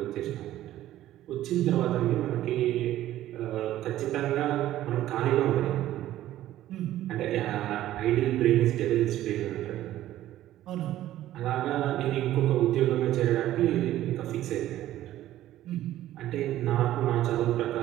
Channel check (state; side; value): quieter; left; 13.8 dB